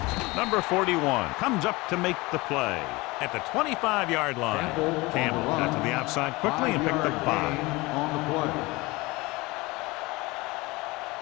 Number 41 comes up to make the play at the 25-yard line. Campbell got to the outside quickly and picked up 5. On the play.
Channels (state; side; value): quieter; right; 22.7 dB